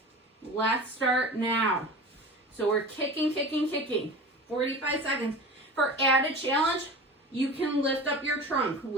Let's start now. So we're kicking, kicking, kicking. 45 seconds. For added challenge, you can lift up your trunk,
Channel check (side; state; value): both; normal; correlation 0.35